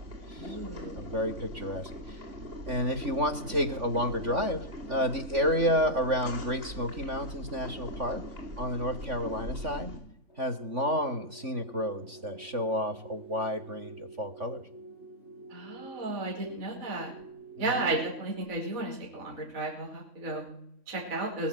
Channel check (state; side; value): late; left; 3.5 ms